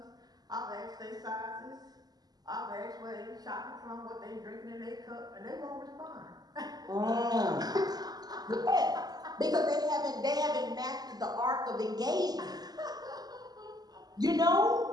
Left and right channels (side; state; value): left; late; 0.19 ms